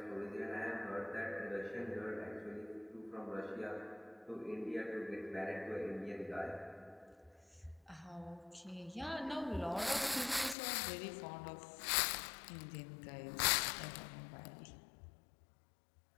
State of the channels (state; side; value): drops out; right; at 10.6 s